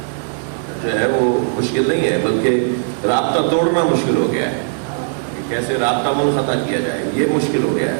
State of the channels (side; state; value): left; silent; digital silence